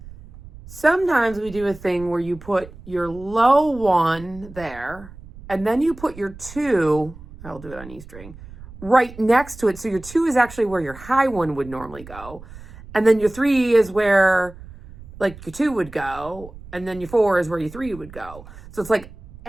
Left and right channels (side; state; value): right; noise; rumble, 17 dB below the sound